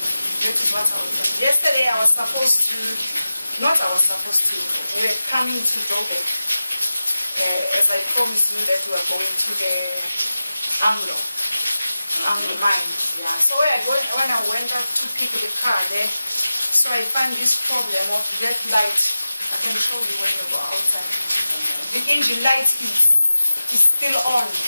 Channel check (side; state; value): both; inverted; correlation -0.95